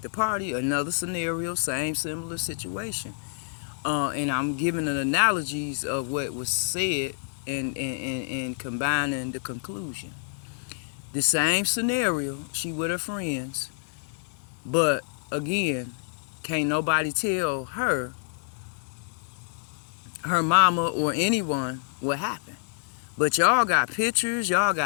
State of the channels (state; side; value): silent; right; digital silence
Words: the party, another scenario, same similar situation. And I'm giving an analogies of what was said and combining the conclusion. The same scenario, she with her friends, but again, can't nobody tell her mama or anyone what happened. But y'all got pictures, y'all